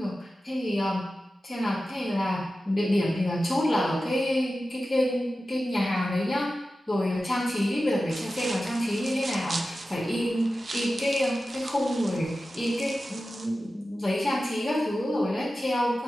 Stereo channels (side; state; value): both; normal; correlation 0.94